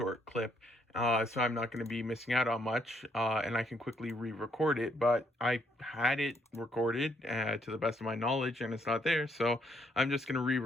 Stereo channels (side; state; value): both; normal; correlation 0.71